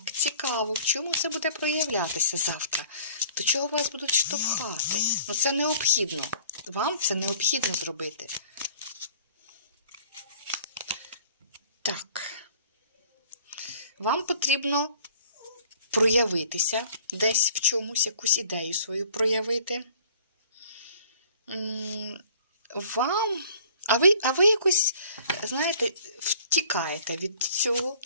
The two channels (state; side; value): inverted; both; correlation -0.52